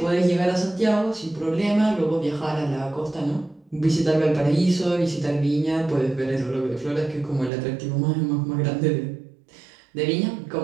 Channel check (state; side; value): drops out; left; at 7.5 s